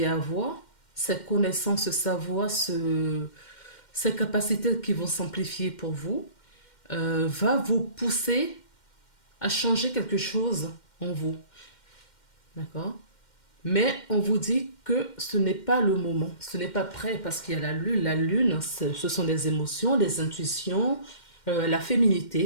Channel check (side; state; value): right; late; 2.1 ms